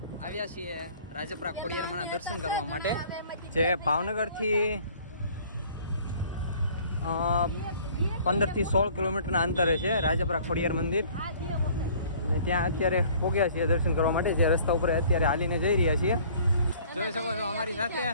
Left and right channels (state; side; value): inverted; both; correlation -0.53